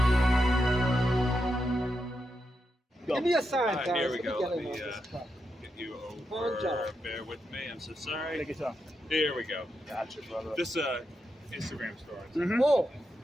Give me a sign, guys. Here we Let me go. get Let in me on this truck. get you Good job. over. Bear with me. I'm so sorry. Take your time. Here we go. Gotcha, brother. This Instagram story. Mm-hmm. Oh,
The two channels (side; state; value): both; normal; correlation 0.85